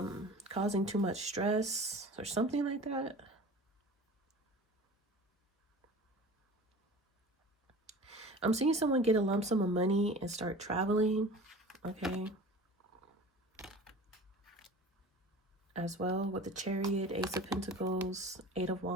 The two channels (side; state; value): both; normal; correlation 0.39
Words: causing too much stress or something like that. I'm seeing someone get a lump sum of money and start traveling, okay? As well with the Chariot, Ace of Pentacles, Eight of